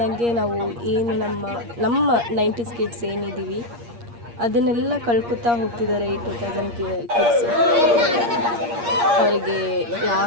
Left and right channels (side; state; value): left; late; 8.5 ms